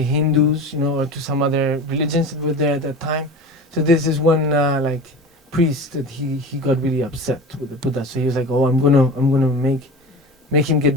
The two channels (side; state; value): both; normal; correlation 0.32